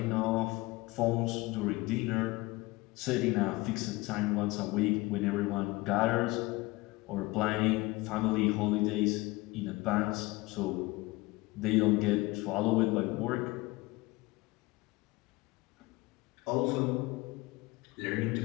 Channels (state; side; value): quieter; right; 21.8 dB